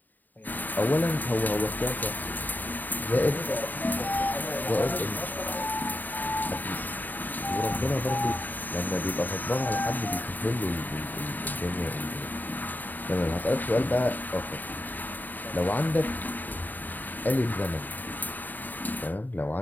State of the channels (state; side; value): late; right; 0.087 ms